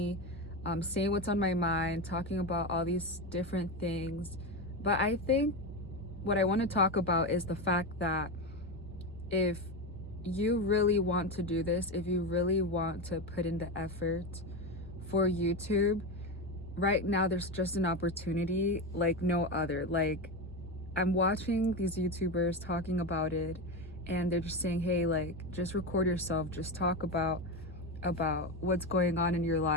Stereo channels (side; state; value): both; normal; correlation 0.16